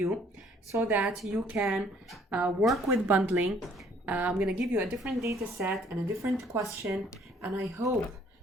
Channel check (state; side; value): normal; both; correlation 0.61